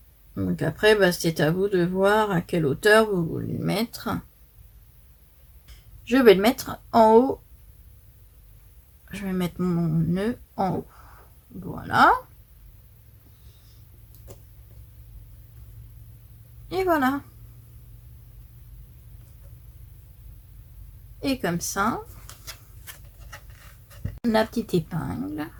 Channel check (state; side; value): identical; both; correlation 1.00